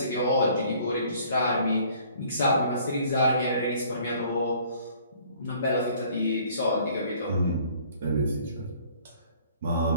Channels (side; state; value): both; inverted; correlation -0.57